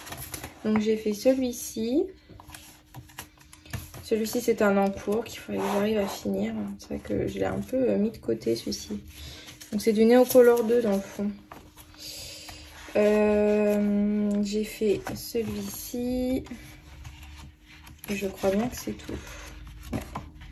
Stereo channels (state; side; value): identical; both; correlation 1.00